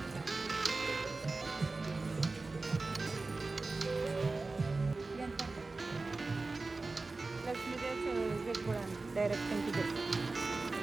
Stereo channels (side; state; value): left; quieter; 3.6 dB